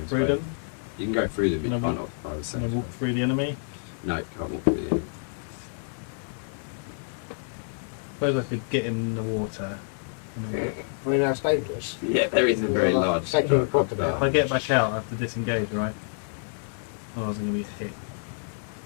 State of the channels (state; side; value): silent; right; digital silence